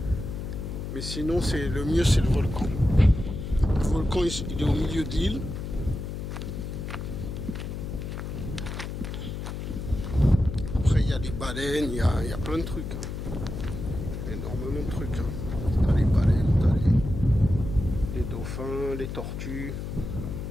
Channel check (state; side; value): noise; left; hum, 6 dB below the sound